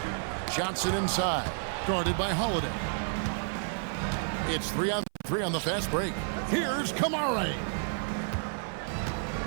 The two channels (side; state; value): left; silent; 57 dB below the other